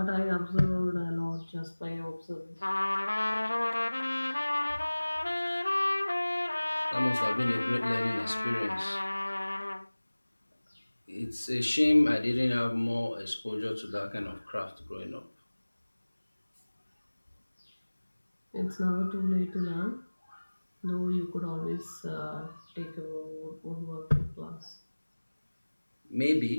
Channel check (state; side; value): inverted; both; correlation -1.00